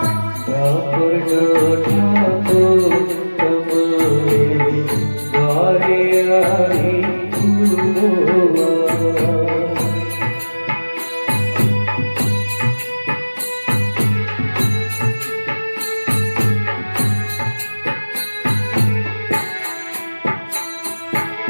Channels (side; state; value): both; inverted; correlation -1.00